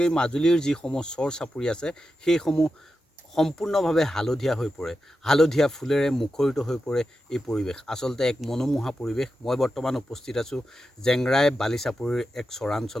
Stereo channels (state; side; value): normal; both; correlation 0.90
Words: মাজুলীৰ যিসমূহ চৰ চাপৰি আছে সেইসমূহ সম্পূৰ্ণভাৱে হালধীয়া হৈ পৰে। হালধীয়া ফুলেৰে মুখৰিত হৈ পৰে এই পৰিৱেশ। আচলতে এক মনোমোহা পৰিৱেশ। মই বৰ্তমান উপস্থিত আছোঁ জেংৰাই বালিচাপৰিৰ এক